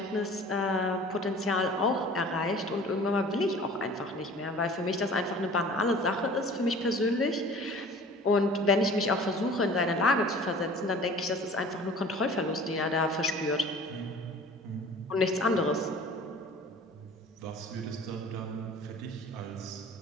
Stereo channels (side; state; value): both; normal; correlation 0.45